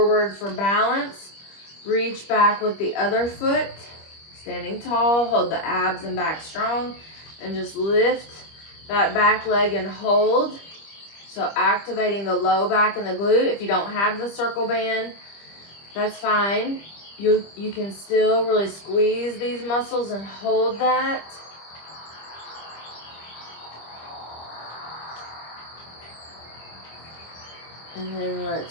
for balance. Reach back with the other foot. Standing tall, hold the abs and back strong, and just lift that back leg and hold. So activating the low back and the glute. If you don't have the circle band, that's fine. You can still really squeeze these muscles and hold that. And then let's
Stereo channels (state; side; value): late; right; 25 ms